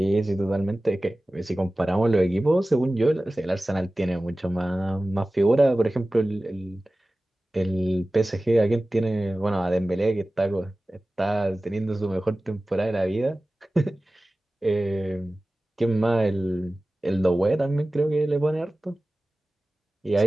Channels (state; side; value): normal; both; correlation 0.97